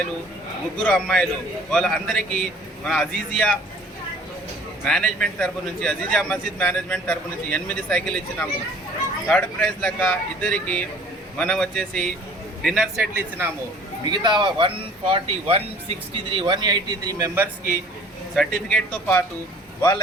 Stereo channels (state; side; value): normal; both; correlation 0.51